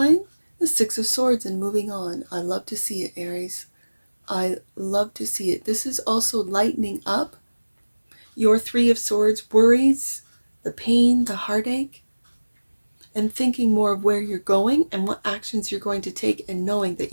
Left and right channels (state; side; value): inverted; both; correlation -1.00